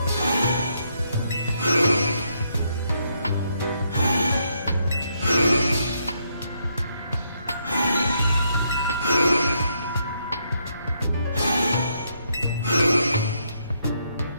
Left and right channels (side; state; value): both; inverted; correlation -0.76